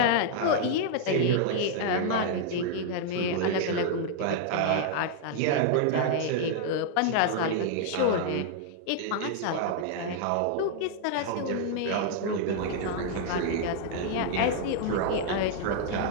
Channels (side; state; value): both; different; correlation -0.01